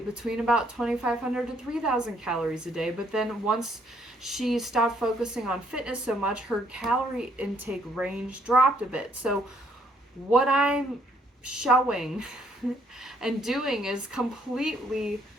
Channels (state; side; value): normal; both; correlation 0.68